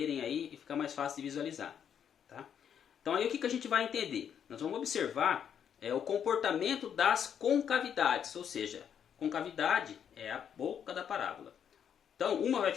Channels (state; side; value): quieter; right; 8.4 dB